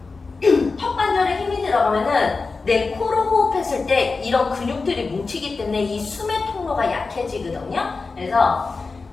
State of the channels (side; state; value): right; quieter; 4.1 dB